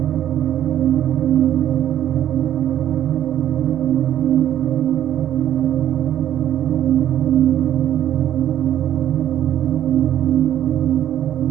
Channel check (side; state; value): left; quieter; 11.4 dB